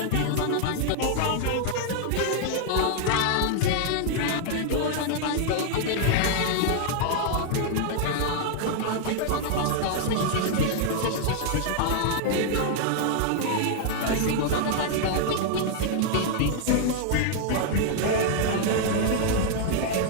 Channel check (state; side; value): different; both; correlation 0.00